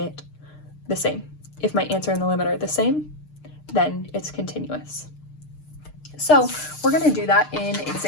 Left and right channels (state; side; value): late; right; 6.6 ms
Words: the same? If my answer and the limit are the same, then it's continuous. So we're going to do that in